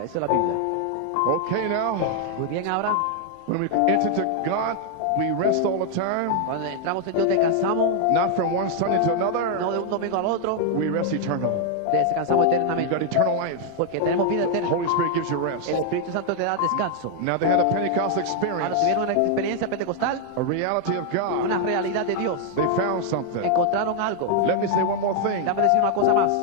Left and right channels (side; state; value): both; different; correlation 0.00